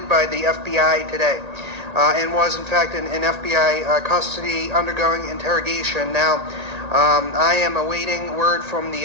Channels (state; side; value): late; left; 1.8 ms